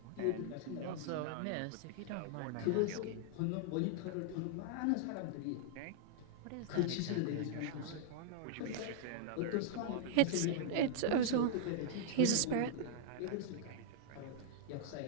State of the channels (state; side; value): different; both; correlation -0.01